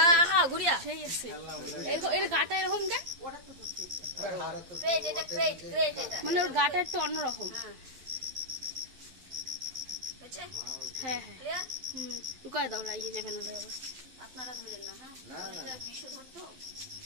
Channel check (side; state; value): left; late; 12 ms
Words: গুড়িয়া সেই আছে। এর গাটা এরকম কেন? ওটা তো ক্রেট, এটা ক্রেট ক্রেট, এটা মানে ওর গাটা একটু অন্যরকম। হ্যাঁ হ্যাঁ, লুকায় দাও, লাগিয়ে যাবে না আবার। আপনারা ধরেন না। হ্যাঁ, এটা বিষ ধরতো,